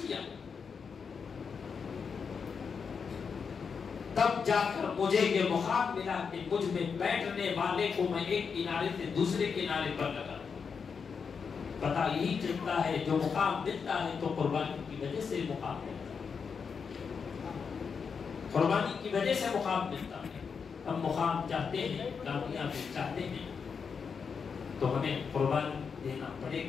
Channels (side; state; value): right; quieter; 5.9 dB